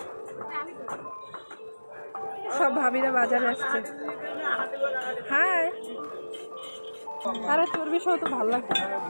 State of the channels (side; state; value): both; inverted; correlation -1.00